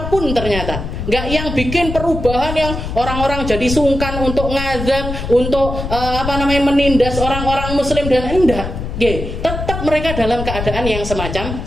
ternyata. Nggak yang bikin perubahan yang orang-orang jadi sungkan untuk ngazab, untuk menindas orang-orang muslim dan enggak. Tetap mereka dalam keadaan yang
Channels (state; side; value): noise; left; rumble, 6 dB below the sound